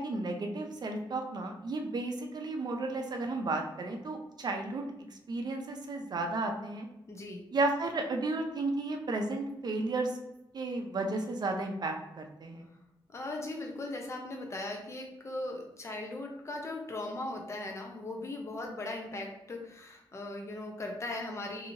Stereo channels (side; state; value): both; normal; correlation 0.62